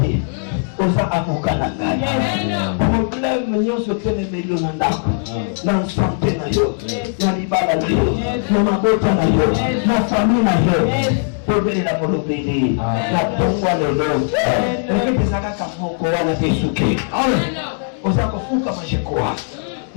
oza avocat na ngai problème nyonso telemeli na ndako na santé na yo na libala na yo na mabota na yo na famille na yo tobelela polobeli na tongwa lelo ekete ezalaka moko wana te suki oza kofuka majekoa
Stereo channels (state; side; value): silent; right; 67 dB below the other